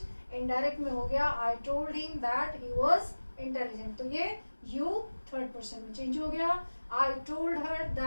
indirect में हो गया I told him that he was intelligent, तो ये यू थर्ड पर्सन में चेंज हो गया। I told her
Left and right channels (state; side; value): inverted; both; correlation -1.00